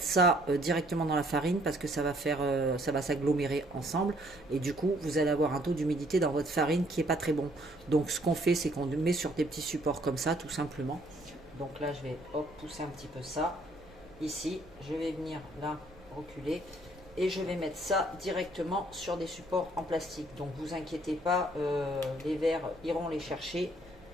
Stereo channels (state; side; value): noise; right; rumble, 24 dB below the sound